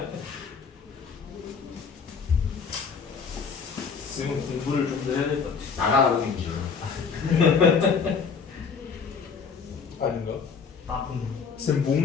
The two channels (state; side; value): quieter; right; 5.7 dB